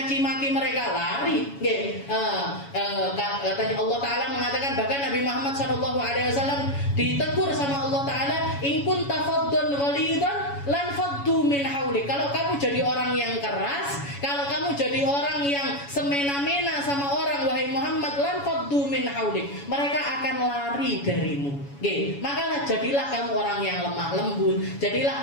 maki mereka lari. Katanya Allah Taala mengatakan, bahkan Nabi Muhammad SAW ditegur sama Allah Taala, in kunta faddan ghalidan lan faddu min haulik. Kalau kamu jadi orang yang keras, kalau kamu jadi orang yang semena-mena sama orang, wahai Muhammad, lan faddu min haulik, mereka akan lari darimu. Maka jadilah kamu orang yang lemah lembut,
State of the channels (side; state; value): right; late; 7.1 ms